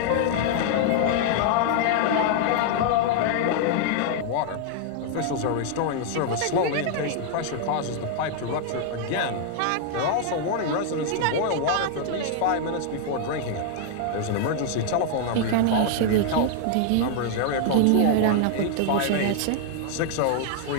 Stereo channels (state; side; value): different; both; correlation 0.00